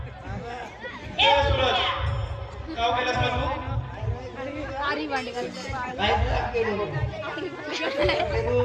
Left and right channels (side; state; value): both; identical; correlation 1.00